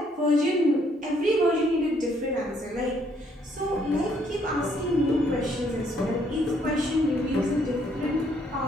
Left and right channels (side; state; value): both; normal; correlation 0.68